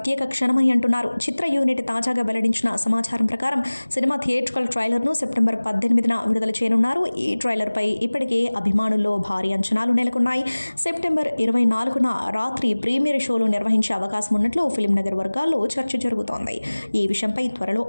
క్షణమని అంటున్నారు. చిత్ర యూనిట్ తాజాగా వెల్లడించిన సమాచారం ప్రకారం సినిమా థియేట్రికల్ ట్రైలర్ను సెప్టెంబర్ 18న విడుదల చేయనున్నారు. ఈ ట్రైలర్పై ఇప్పటికే అభిమానులు భారీ అంచనాలు నెలకొన్నాయి. సెప్టెంబర్ 24న రాత్రి ప్రీమియర్ షోలు నిర్వహించే అవకాశం ఉన్నట్లు ఫిల్మ్ నగర్ వర్గాల్లో చర్చ జరుగుతోంది. ఈ విషయంపై త్వరలో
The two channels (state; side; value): inverted; both; correlation -1.00